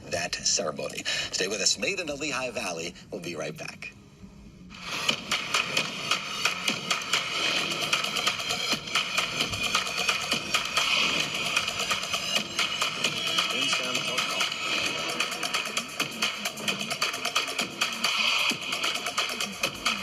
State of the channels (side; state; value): both; identical; correlation 1.00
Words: that ceremony. Stay with us. Made in the Lehigh Valley. We'll be right back.